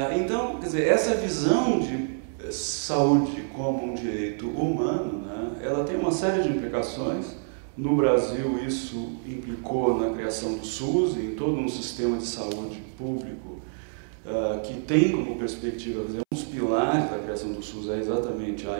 Então, quer dizer, essa visão de saúde como um direito humano, né, ela tem uma série de implicações. No Brasil, isso implicou na criação do SUS e em todo um sistema de saúde público que tem como perspectiva, quer dizer, um dos pilares da criação do SUS é exatamente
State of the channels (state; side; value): silent; left; 60 dB below the other